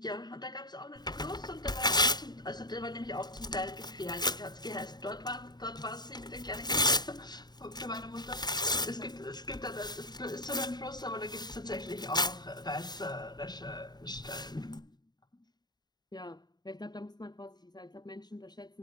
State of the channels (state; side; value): late; right; 0.20 ms